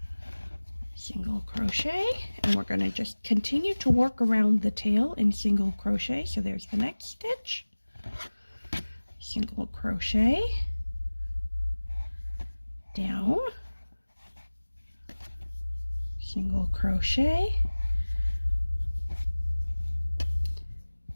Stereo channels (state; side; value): inverted; both; correlation -1.00